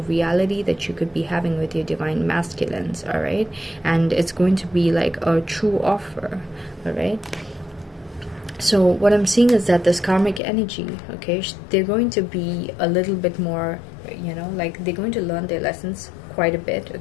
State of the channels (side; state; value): right; drops out; at 10.4 s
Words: reality that you could be having with your divine masculines, all right? And it's going to be like a true offer, all right? So what I'm seeing is that this karmic energy, okay, they're going to be a little bit more, you know, like they're going to learn their lessons quite a bit,